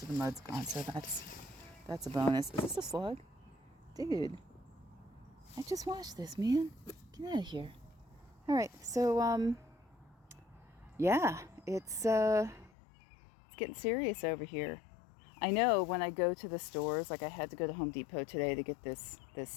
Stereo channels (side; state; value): right; drops out; at 12.7 s